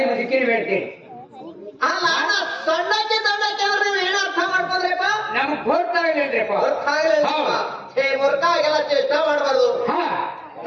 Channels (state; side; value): identical; both; correlation 1.00